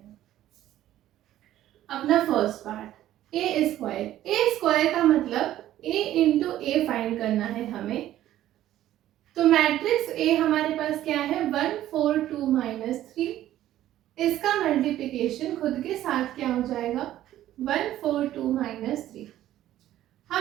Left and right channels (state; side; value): quieter; left; 13.2 dB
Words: अपना first part A square. A square का मतलब A इंटू A फाइंड करना है हमें। तो मैट्रिक्स A हमारे पास क्या है, 1 4 2 -3। इसका मल्टीप्लिकेशन खुद के साथ क्या हो जाएगा, 1 4 2 -3।